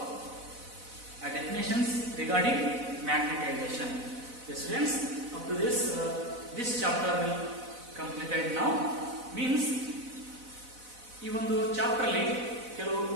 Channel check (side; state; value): left; late; 4.0 ms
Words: definitions regarding magnetization. Yes, students, up to this chapter will completed now. Means ಈ ಒಂದು chapter ಅಲ್ಲಿ ಕೆಲವು